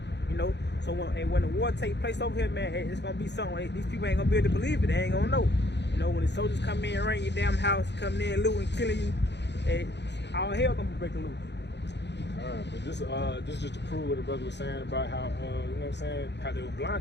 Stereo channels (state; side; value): late; right; 0.50 ms